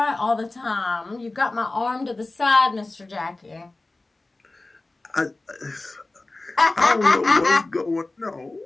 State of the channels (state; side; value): quieter; right; 3.1 dB